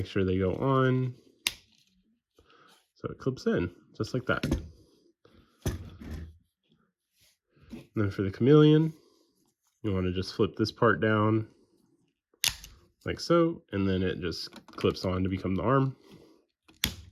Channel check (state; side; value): identical; both; correlation 1.00